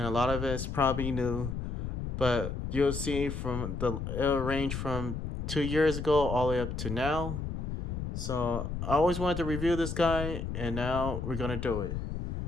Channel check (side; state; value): left; noise; rumble, 4 dB below the sound